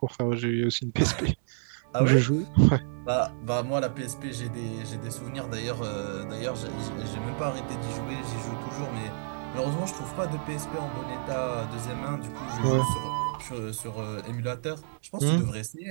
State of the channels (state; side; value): silent; left; digital silence